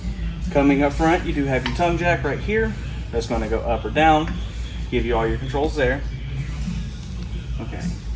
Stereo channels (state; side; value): identical; both; correlation 1.00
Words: Coming up front, you do have your tongue jack right here. That's going to go up or down, give you all your controls there. Okay.